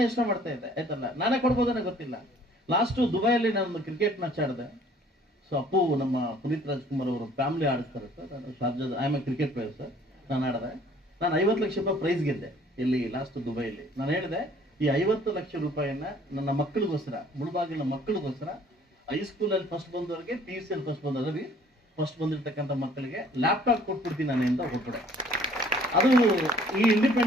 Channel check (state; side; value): normal; both; correlation 0.56